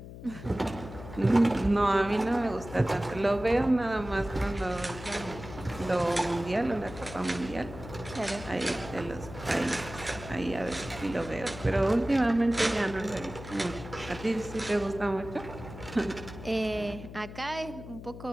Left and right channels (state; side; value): noise; left; hum, 13 dB below the sound